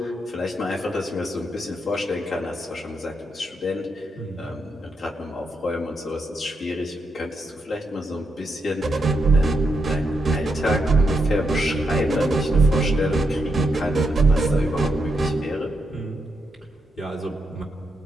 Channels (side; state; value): both; normal; correlation 0.82